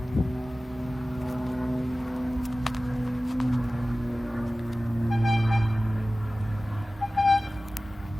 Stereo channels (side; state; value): both; normal; correlation 0.96